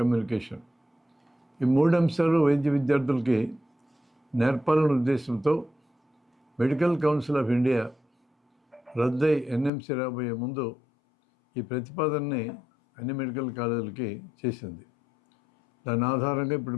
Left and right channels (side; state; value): right; drops out; at 9.7 s